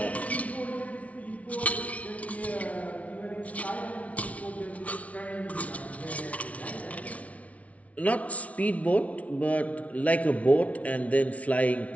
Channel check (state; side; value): late; right; 0.066 ms